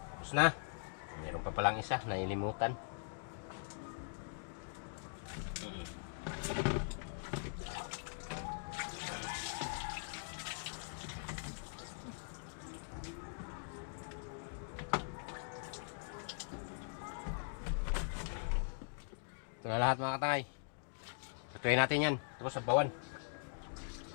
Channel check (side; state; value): right; silent; digital silence